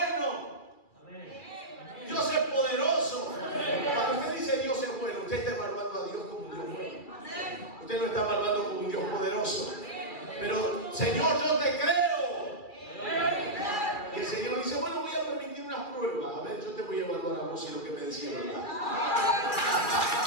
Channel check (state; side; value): late; right; 2.3 ms